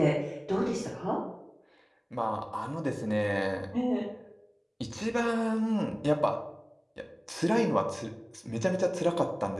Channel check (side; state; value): both; identical; correlation 1.00